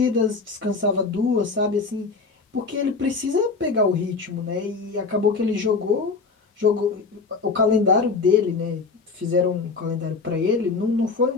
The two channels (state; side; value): quieter; right; 4.4 dB